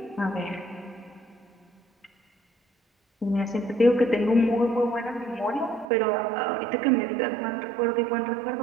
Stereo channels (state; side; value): drops out; left; at 5.9 s